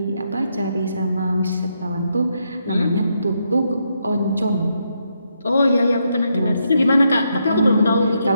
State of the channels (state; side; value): inverted; both; correlation -0.79